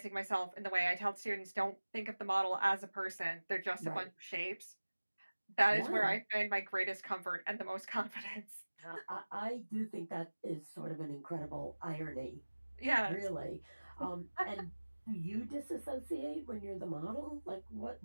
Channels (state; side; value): inverted; both; correlation -1.00